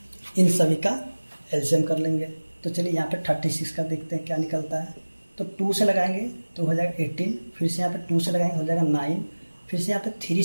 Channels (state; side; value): inverted; both; correlation -1.00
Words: इन सभी का एलसीएम कर लेंगे। तो चलिए यहाँ पे 36 का देखते हैं क्या निकलता है। तो 2 से लगाएंगे तो हो जाएगा 18, फिर से यहाँ पे 2 से लगाएंगे हो जाएगा 9, फिर से यहाँ पे 3